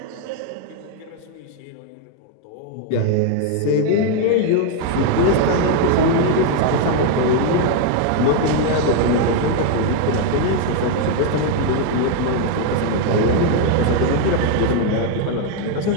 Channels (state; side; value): different; both; correlation 0.01